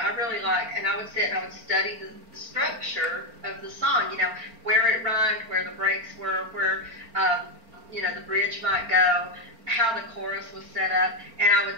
really like, and I would sit and I would study the structure of the song, you know, where it rhymed, where the breaks were, where, you know, the bridge might go, how the chorus was set up, and I would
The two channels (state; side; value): late; left; 4.4 ms